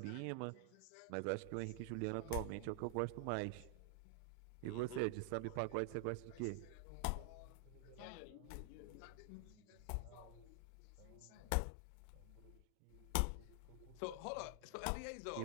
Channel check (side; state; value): both; different; correlation 0.00